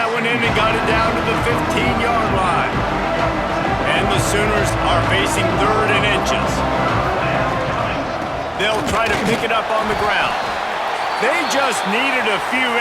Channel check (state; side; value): identical; both; correlation 1.00